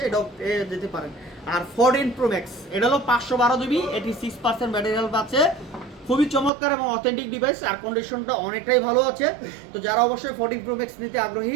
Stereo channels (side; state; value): left; drops out; at 6.5 s